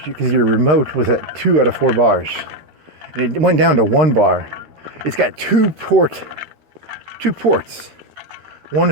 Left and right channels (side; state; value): left; late; 13 ms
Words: because your remote was at 2 out of 4 bars. And it went down to 1 bar. It's got two ports. One